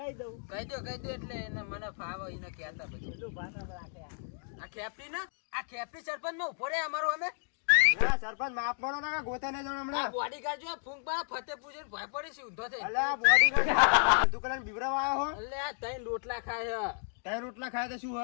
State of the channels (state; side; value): silent; right; 56 dB below the other